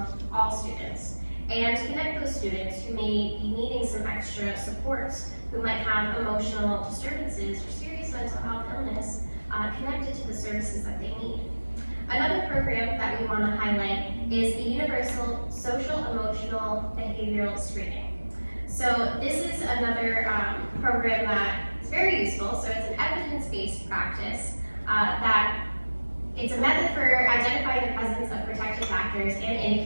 all students, and connect those students who may be needing some extra supports, who might have emotional disturbances or serious mental health illness connected to the services that they need. Another program that we want to highlight is the Universal Social Emotional Behavioral Screening. So this is another program that is very useful. So it's an evidence-based practice that it's a method for identifying the presence of protective factors and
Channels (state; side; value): inverted; both; correlation -1.00